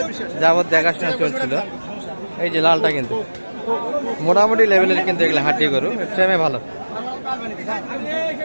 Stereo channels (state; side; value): inverted; both; correlation -1.00